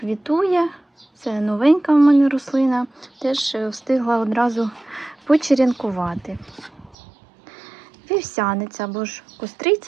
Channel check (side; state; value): left; drops out; at 7.0 s